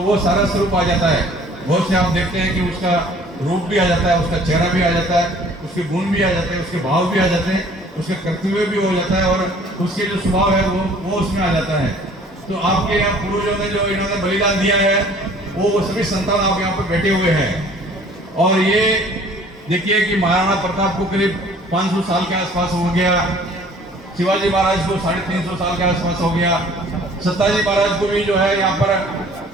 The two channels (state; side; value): normal; both; correlation 0.53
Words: वो सारा स्वरूप आ जाता है। बहुत से आप देखते हैं कि उसका रूप भी आ जाता है, उसका चेहरा भी आ जाता है, उसके गुण भी आ जाते हैं, उसके भाव भी आ जाते हैं, उसके कर्तव्य भी हो जाता है और उसके जो स्वभाव है वो उसमें आ जाता है। तो आपके यहाँ पूर्वजों ने जो इन्होंने बलिदान दिया है वो सभी संतान आप यहाँ पर बैठे हुए हैं। और ये देखिए कि महाराणा प्रताप को करीब 500 साल के आसपास हो गया, शिवाजी महाराज को 350 साल के आसपास हो गया, सत्ताजी महाराज को भी जो है यहाँ पर